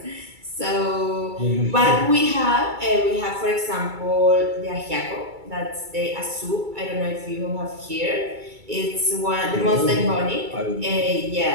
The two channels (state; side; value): late; left; 2.3 ms